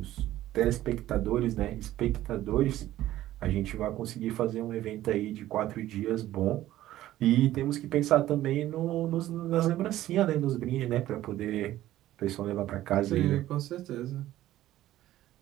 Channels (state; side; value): quieter; left; 14.3 dB